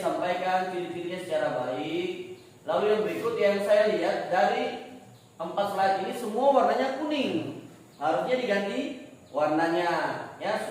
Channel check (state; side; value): identical; both; correlation 1.00